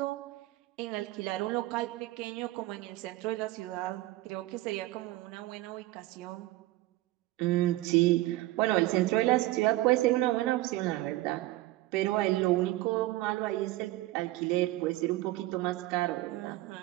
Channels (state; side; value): quieter; left; 17.6 dB